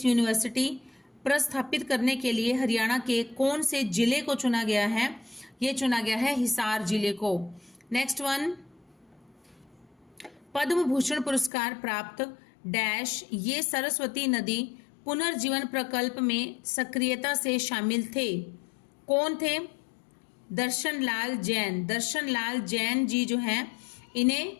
यूनिवर्सिटी प्रस्थापित करने के लिए हरियाणा के कौन से जिले को चुना गया है? ये चुना गया है हिसार जिले को। नेक्स्ट वन, पद्म भूषण पुरस्कार प्राप्त डैश ये सरस्वती नदी पुनर्जीवन प्रकल्प में सक्रियता से शामिल थे। कौन थे? दर्शन लाल जैन जी जो हैं,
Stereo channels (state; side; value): drops out; right; at 11.5 s